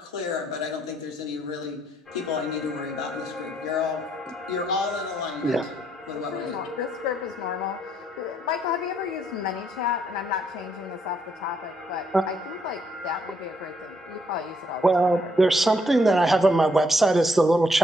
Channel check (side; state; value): both; normal; correlation 0.72